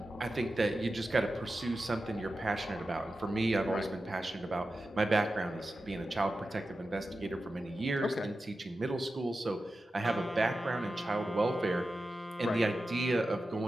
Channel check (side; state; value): both; normal; correlation 0.92